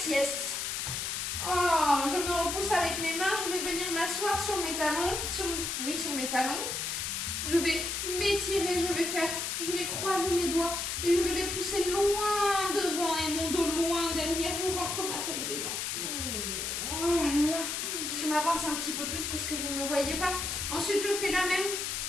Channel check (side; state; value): left; noise; hiss, 2 dB below the sound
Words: Oh, je me repousse avec mes mains. Je vais venir m'asseoir sur mes talons. Sur mes talons. Je vais m'étirer. Je vais croiser mes doigts et je vais les pousser loin devant et mon dos loin derrière. Je rentre ma tête dedans. Oh là là. Je m'avance un petit peu plus parce que vous ne me voyez pas. Ensuite, je fais